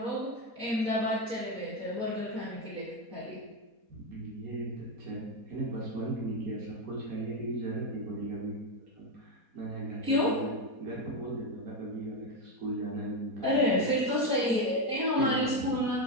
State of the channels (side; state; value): left; late; 4.2 ms